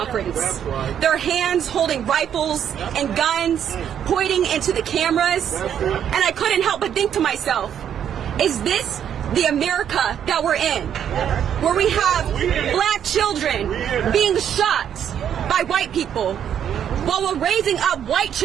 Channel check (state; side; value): quieter; left; 9.2 dB